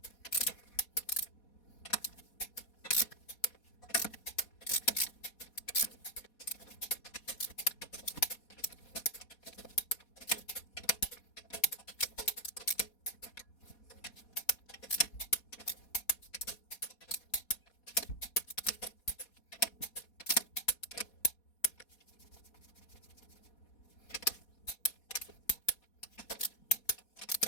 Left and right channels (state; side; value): late; right; 4.2 ms